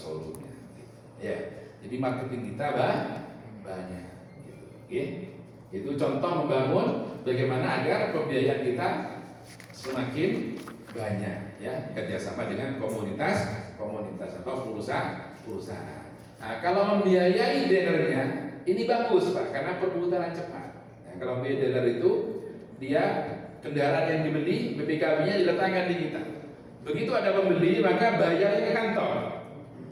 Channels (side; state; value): both; identical; correlation 1.00